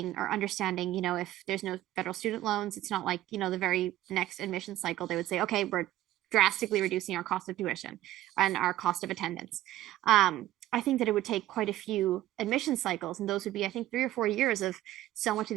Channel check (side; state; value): left; quieter; 14.5 dB